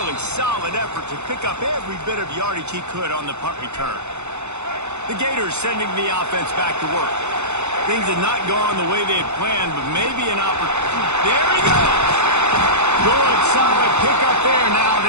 solid effort to pick up every bit of yardage he could on the punt return. The Gators sending the offense back to work. Things had not gone the way they had planned, but maybe an opportunity. There he goes! Good, solid pickup there. Now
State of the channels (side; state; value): left; late; 0.82 ms